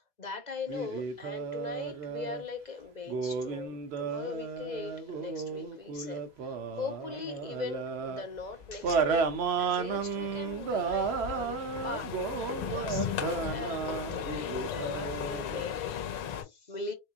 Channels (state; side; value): late; right; 2.0 ms